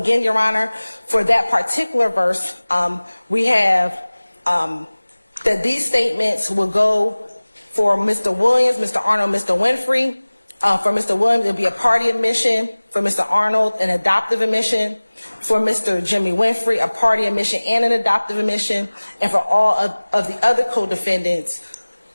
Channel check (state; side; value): inverted; both; correlation -1.00